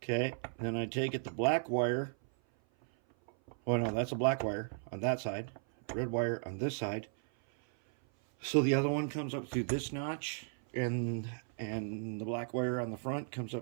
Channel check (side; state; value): left; silent; 54 dB below the other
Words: Okay. Then I take it, the black wire. Oh no, that's a black wire on that side. Red wire on this side. So the other one comes up through this notch, and the black wire on the front comes